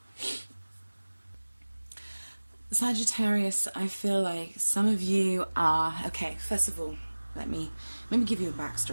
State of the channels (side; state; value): both; inverted; correlation -1.00